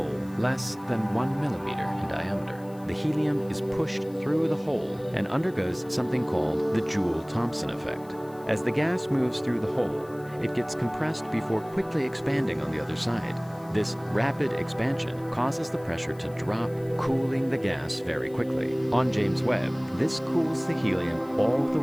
less than 1 millimeter in diameter. The helium is pushed through the hole and undergoes something called the Joule-Thomson effect. As the gas moves through the hole, it gets compressed before quickly expanding on the other side. This rapid expansion causes the pressure to drop, cooling the gas very quickly. On James Webb, this cools the helium all the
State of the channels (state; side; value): noise; left; hiss, 26 dB below the sound